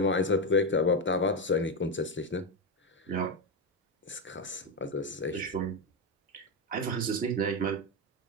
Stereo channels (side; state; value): both; normal; correlation 0.10